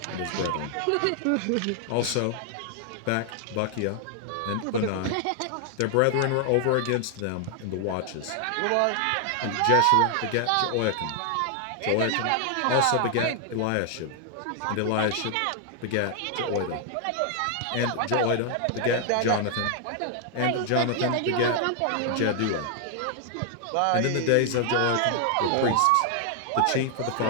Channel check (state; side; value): different; both; correlation 0.00